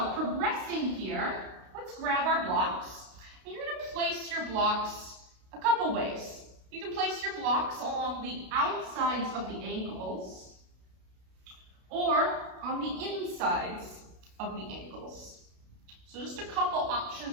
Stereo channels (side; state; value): left; late; 32 ms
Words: progressing here, let's grab our blocks. And you're going to place your blocks a couple ways. You can place your blocks along the outsides of the ankles or on the insides of the ankles. So just a couple